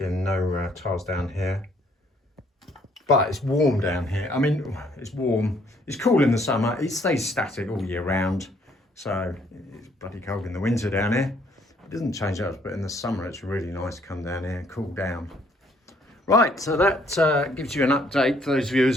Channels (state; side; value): normal; both; correlation 0.65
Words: no tiles down here. But it's warm down here. I mean, it's warm. It's cool in the summer. It stays static all year round. So it's bloody cold in the winter down here. It doesn't change up, but in the summer it's really nice to come down here and cool down. Right, so that gives you an update for those